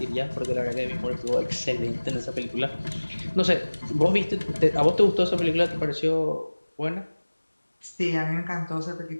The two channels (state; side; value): inverted; both; correlation -1.00